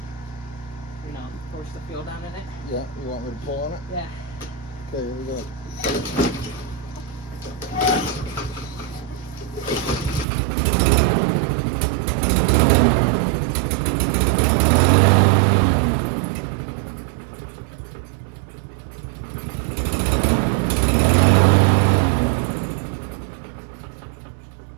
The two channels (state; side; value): drops out; left; at 10.2 s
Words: You know, force the fuel down in it. Yeah, you want me to pull on it? Yeah. Okay, here we go.